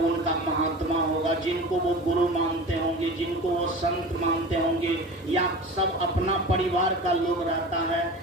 महात्मा होगा, जिनको वो गुरु मानते होंगे, जिनको वो संत मानते होंगे, या सब अपना परिवार का लोग रहता है,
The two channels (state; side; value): normal; both; correlation 0.34